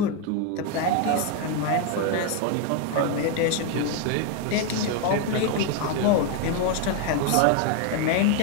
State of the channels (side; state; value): both; different; correlation 0.01